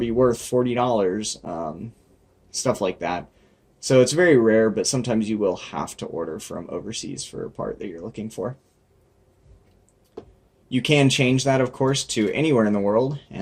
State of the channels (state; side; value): identical; both; correlation 1.00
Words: worth $40, stuff like that. So it's very rare, but sometimes you will have to order from overseas for a part that you're looking for. You can change that, of course, to anywhere in the world,